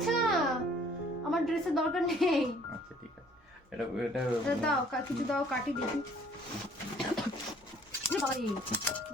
ছিল না, আমার ড্রেসের দরকার নেই। আচ্ছা ঠিক আছে, এটা এটা দাও কিছু দাও, কাটি দেখি।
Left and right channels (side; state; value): both; normal; correlation 0.57